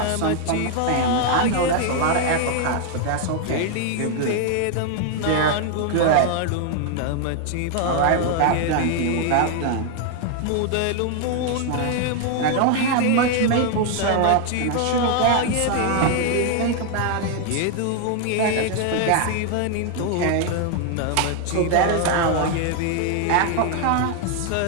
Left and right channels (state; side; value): different; both; correlation 0.00